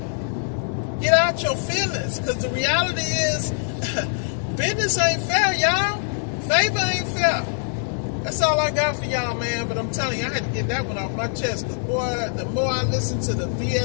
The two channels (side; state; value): right; silent; digital silence